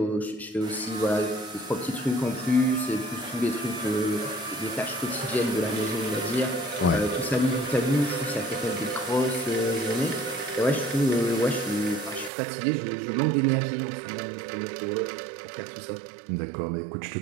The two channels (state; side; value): drops out; left; at 12.3 s